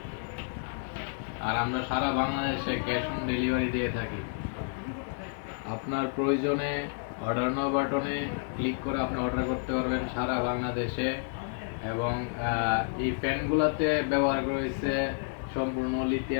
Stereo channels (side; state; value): right; silent; 58 dB below the other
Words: আর আমরা সারা বাংলাদেশে ক্যাশ অন ডেলিভারি দিয়ে থাকি। আপনার প্রয়োজনে অর্ডার নাও বাটনে ক্লিক করে আপনি অর্ডার করতে পারবেন সারা বাংলাদেশে। এবং এই ফ্যানগুলোতে ব্যবহার করেছে সম্পূর্ণ